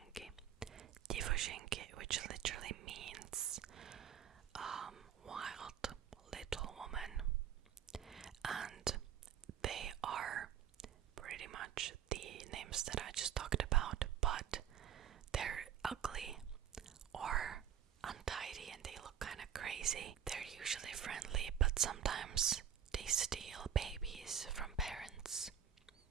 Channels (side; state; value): left; quieter; 9.2 dB